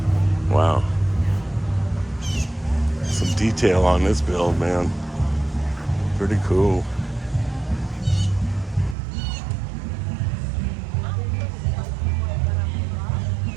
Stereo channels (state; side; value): drops out; left; at 9.0 s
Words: Wow. Some detail on this build, man. Pretty cool.